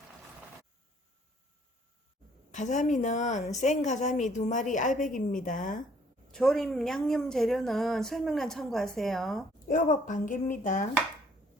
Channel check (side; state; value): both; normal; correlation 0.61